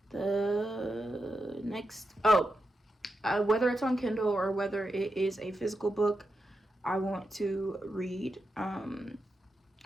The next, whether it's on Kindle or whether it is a physical book, I want to read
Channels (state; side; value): normal; both; correlation 0.87